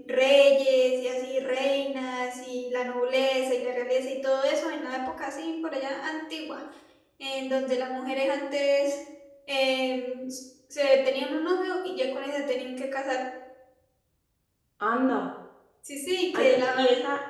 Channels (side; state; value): both; identical; correlation 1.00